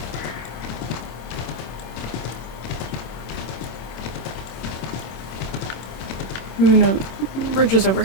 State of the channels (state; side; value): late; right; 26 ms